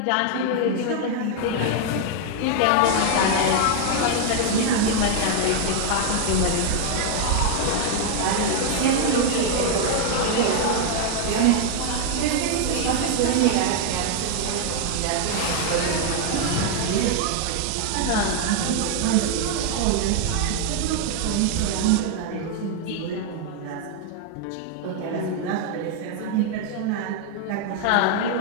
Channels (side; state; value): both; different; correlation 0.00